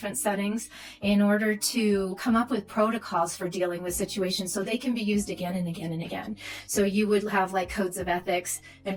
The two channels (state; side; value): identical; both; correlation 1.00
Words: settings in order to come up with protocols for dealing with situations so they can be used again and again and again. So you would have like codes of ethics